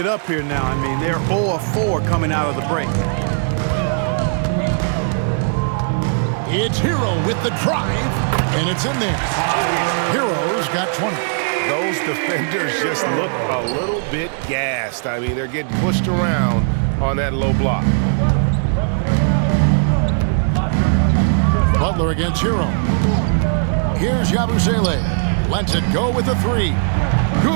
up here now. I mean, they're 0 of 4 coming out of the break. It's Hero with the drive, and it's in there. Hero's got 20. Those defenders just look a little bit gassed. I mean, they're getting pushed around on that low block. Butler against Hero. Here's Yabusele. Lets it go with the 3.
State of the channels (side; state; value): left; silent; digital silence